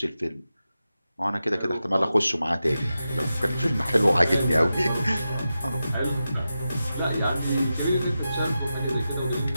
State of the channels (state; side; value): inverted; both; correlation -0.91